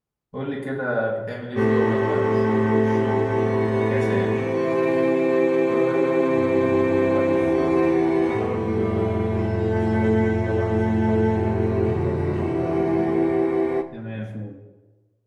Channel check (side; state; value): both; identical; correlation 1.00